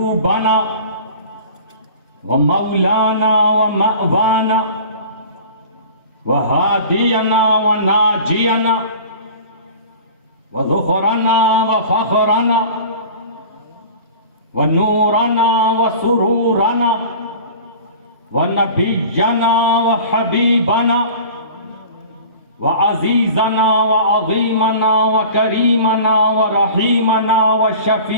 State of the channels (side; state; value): both; inverted; correlation -0.40